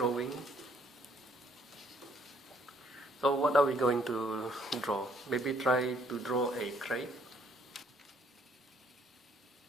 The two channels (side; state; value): both; normal; correlation 0.65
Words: So what are we going to draw? Maybe try to draw a crate.